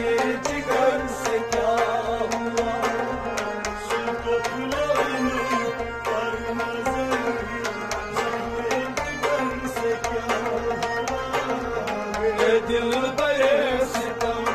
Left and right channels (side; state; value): both; identical; correlation 1.00